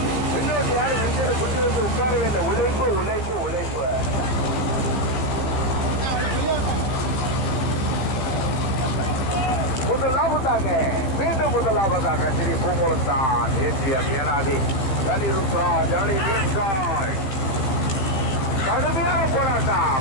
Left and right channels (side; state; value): right; late; 15 ms